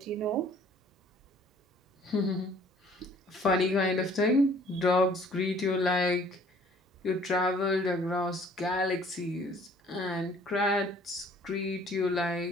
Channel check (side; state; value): both; normal; correlation 0.56